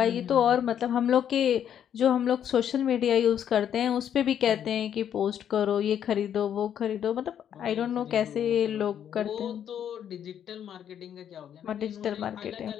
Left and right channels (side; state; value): right; quieter; 9.4 dB